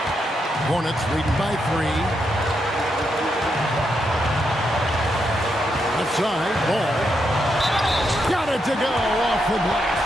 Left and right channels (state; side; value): normal; both; correlation 0.81